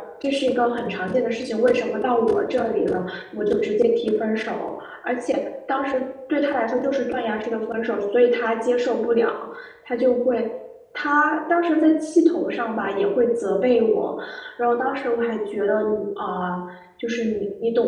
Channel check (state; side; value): identical; both; correlation 1.00